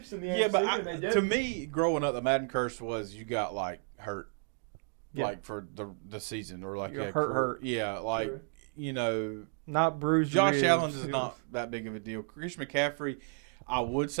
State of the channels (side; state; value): left; silent; 56 dB below the other